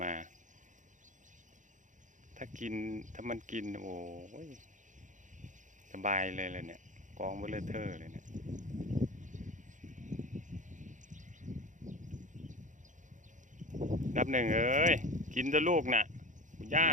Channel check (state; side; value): late; left; 0.36 ms